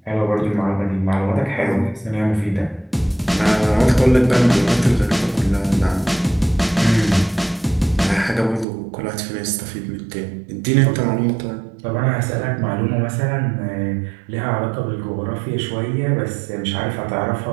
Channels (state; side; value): drops out; left; at 8.7 s